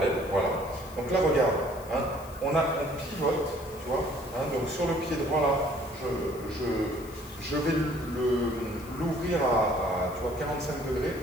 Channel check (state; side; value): noise; left; hiss, 20 dB below the sound